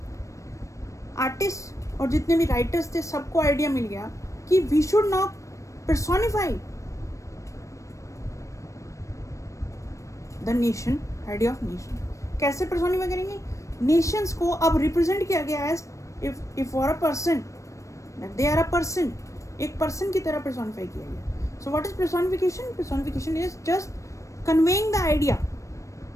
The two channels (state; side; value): late; right; 0.15 ms